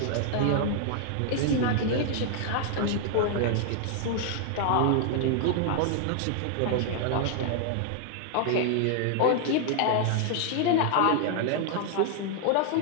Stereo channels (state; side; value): different; both; correlation 0.00